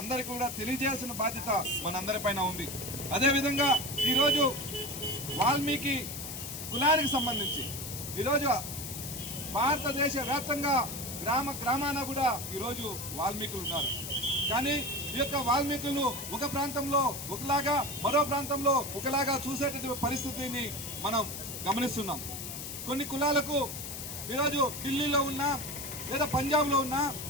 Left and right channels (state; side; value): noise; left; hiss, 8 dB below the sound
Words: కూడా తెలియజేయాల్సిన బాధ్యత మనందరిపైన ఉంది. అదేవిధంగా ఈరోజు వాల్మీకి కులానికి సంబంధించి ఈరోజు భారతదేశ వ్యాప్తంగా గ్రామాన కూడా ఈరోజు వాల్మీకులు ఉన్నారు. కానీ ఈ యొక్క వాల్మీకులను ఒక ప్రాంతంలో ఒకలాగా, మరో ప్రాంతంలో ఒకలాగా చూసేటటువంటి పరిస్థితిని మనం గమనిస్తున్నాం. కొన్ని కులాలకు ఈరోజు ఢిల్లీలో ఉన్నా, లేదా పంజాబ్లో ఉన్నా,